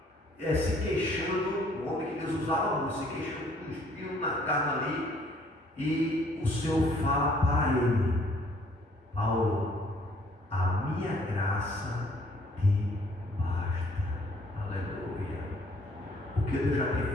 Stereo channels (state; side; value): normal; both; correlation 0.61